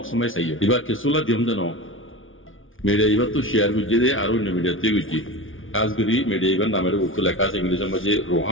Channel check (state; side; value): late; right; 0.57 ms